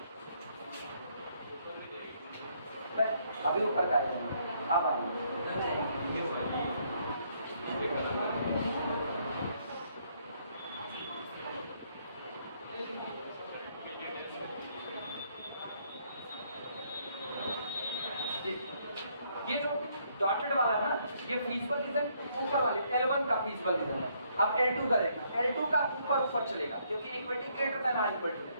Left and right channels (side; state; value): both; inverted; correlation -0.70